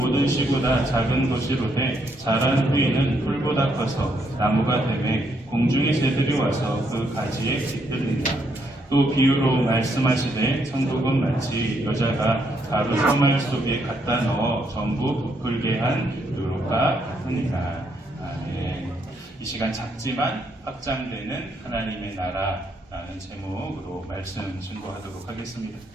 씨보다 작은 것이로되 자란 후에는 풀보다 커서 나무가 되매 공중의 새들이 와서 그 가지에 깃들린다. 또 비유로 말씀하시되 천국은 마치 여자가 가루 서말 속에 갖다 넣어 전부 부풀게 한 누룩과 같으니라. 아멘. 이 시간 작지만 확장되는 하나님의 나라라는 제목으로 말씀 증거하도록 하겠습니다.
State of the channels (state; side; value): normal; both; correlation 0.75